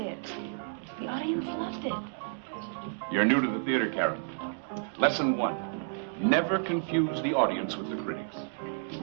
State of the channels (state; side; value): silent; left; digital silence